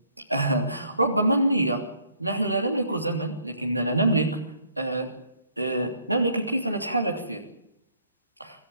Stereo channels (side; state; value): both; inverted; correlation -0.65